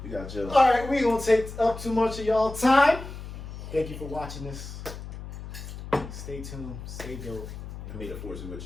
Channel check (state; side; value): noise; left; hum, 11 dB below the sound